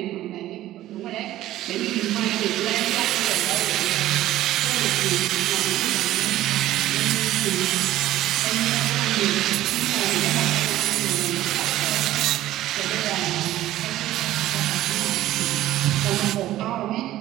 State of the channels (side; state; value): left; quieter; 14.5 dB